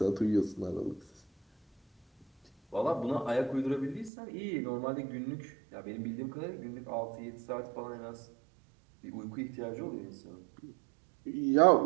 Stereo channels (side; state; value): left; drops out; at 4.1 s